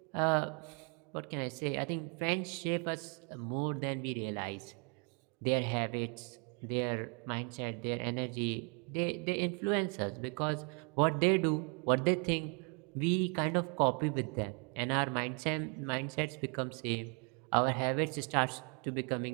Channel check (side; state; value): left; quieter; 36.0 dB